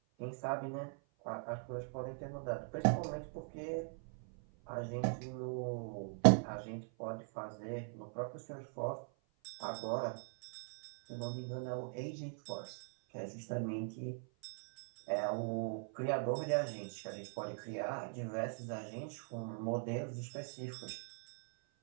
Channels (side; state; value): left; silent; 51 dB below the other